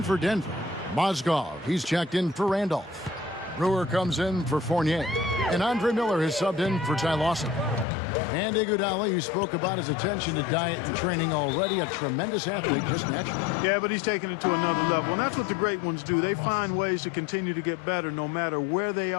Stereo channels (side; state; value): right; drops out; at 7.9 s